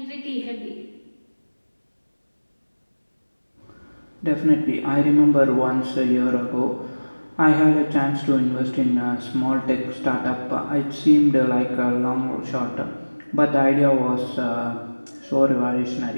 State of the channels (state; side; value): inverted; both; correlation -1.00